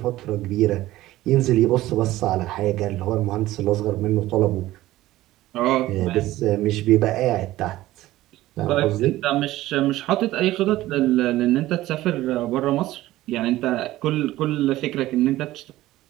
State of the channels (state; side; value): quieter; left; 16.0 dB